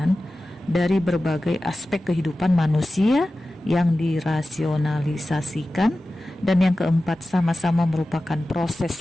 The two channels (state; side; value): normal; both; correlation 0.95